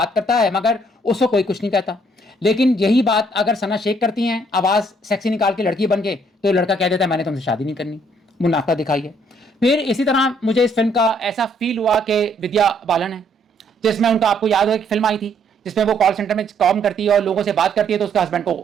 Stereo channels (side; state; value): both; normal; correlation 0.66